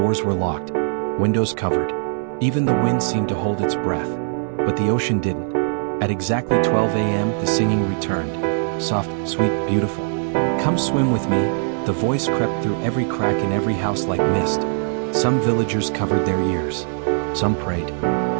were locked. Windows covered. Even the wind seemed to hold its breath. But the ocean didn't. At exactly 12 a.m. the singing returned. Soft, sweet, beautiful. Come swim with me. The voice crept through every crack in every house like mist. Some villagers covered their ears. Some prayed.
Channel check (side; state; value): left; silent; 65 dB below the other